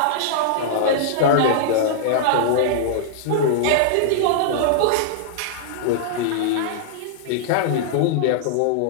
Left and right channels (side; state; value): both; different; correlation -0.02